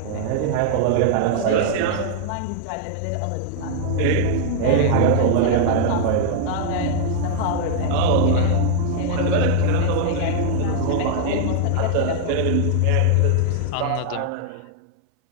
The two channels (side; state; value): both; different; correlation 0.00